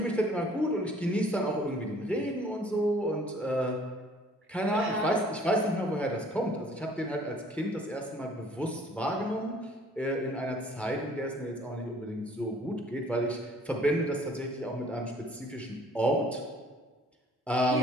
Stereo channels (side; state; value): both; normal; correlation 0.56